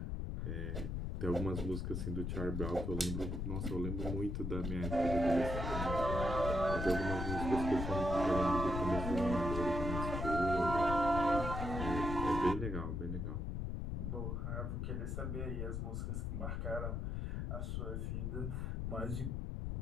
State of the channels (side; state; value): left; noise; rumble, 2 dB below the sound